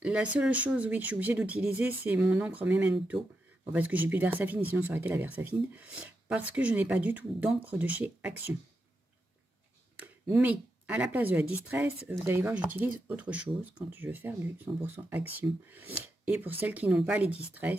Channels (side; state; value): both; normal; correlation 0.86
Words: seule chose, oui, que je suis obligée d'utiliser, c'est mon encre Memento. Bon, parce que j'ai plus de Versafine, sinon ça aurait été la Versafine. Parce que je n'ai pas du tout d'encre de chez Action. Mais, à la place de la Distress, vous allez voir, j'utilise autre chose quand je veux faire du 100% Action. Et pour celles qui n'ont pas les